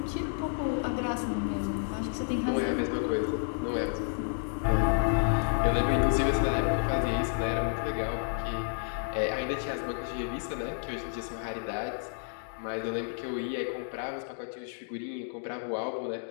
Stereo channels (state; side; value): silent; right; digital silence